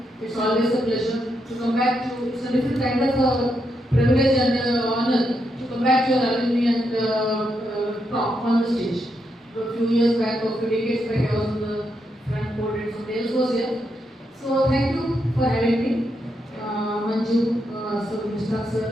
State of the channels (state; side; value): normal; both; correlation 0.81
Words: It's always a pleasure to come back to. It's a different kind of privilege and honor to come back to your alumni and talk on the stage. A few years back, or a few decades back, I was on the front podium, so Dales was here. So thank you for having me, Manju, so Mr.